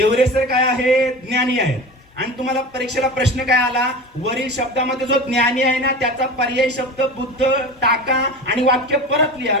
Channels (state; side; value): normal; both; correlation 0.31